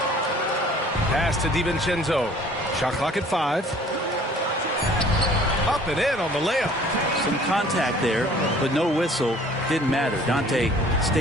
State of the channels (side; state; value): both; normal; correlation 0.52